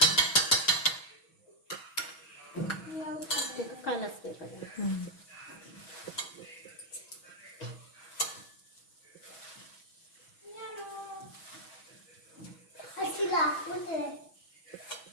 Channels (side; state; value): right; late; 6.2 ms